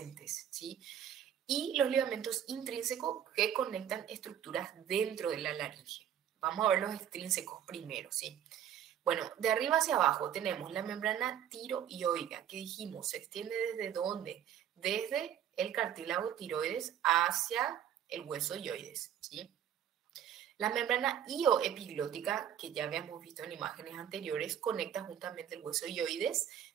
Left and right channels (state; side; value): quieter; left; 9.8 dB